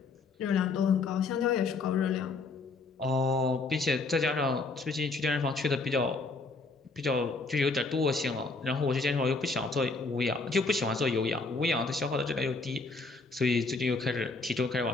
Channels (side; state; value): right; quieter; 3.8 dB